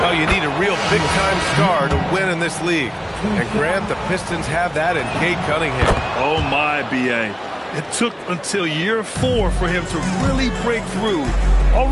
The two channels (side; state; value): both; identical; correlation 1.00